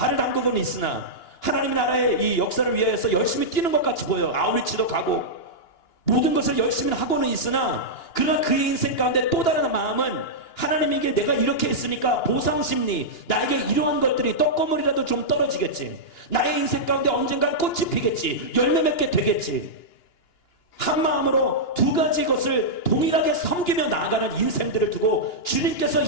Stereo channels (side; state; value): right; late; 2.9 ms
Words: 담그고는 있으나, 하나님의 나라의 이 역사를 위하여서 열심히 뛰는 것 같이 보여요. 아우리치도 가고 모든 것을 열심히 하고는 있으나, 그러나 그의 인생 가운데 또 다른 마음은 하나님에게 내가 이렇게 했으니까 보상심리, 나에게 이러한 것들이 떡고물이라도 좀 떨어지겠지, 나의 인생 가운데 언젠간 꽃이 피겠지, 열매 맺게 되겠지, 한 마음으로 두 가지 것을 동일하게 섬기며 나아가는 인생들을 두고 주님께서